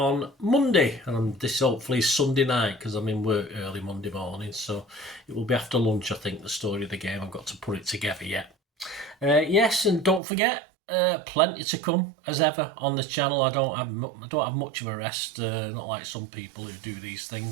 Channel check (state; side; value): drops out; left; at 10.2 s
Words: Monday, and this hopefully is Sunday night because I'm in work early Monday morning, so it will be after lunch. I think the story of the game. I've got to put it together yet. Yes, and don't forget, plenty to come as ever on the channel. I don't have much of a rest, not like some people who do these